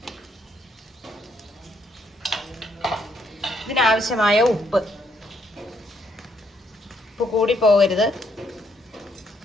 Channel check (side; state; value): both; normal; correlation 0.72